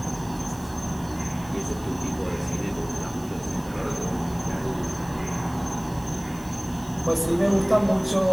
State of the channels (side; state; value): right; noise; hiss, 22 dB below the sound